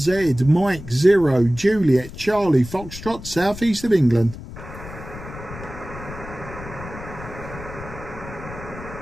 Mike 0, Juliet, Charlie, Foxtrot, southeast of England.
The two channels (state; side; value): noise; left; rumble, 13 dB below the sound